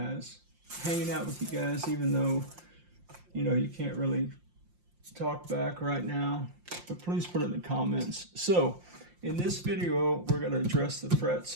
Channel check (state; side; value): late; left; 5.7 ms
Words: Hanging out with you guys, even though, you know, you can't really talk back right now, but please put it in the comments. So in this video, we're going to address the frets